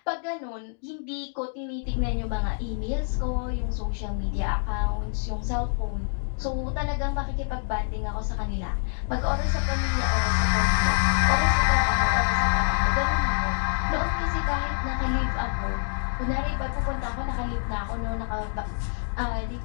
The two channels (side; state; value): right; silent; digital silence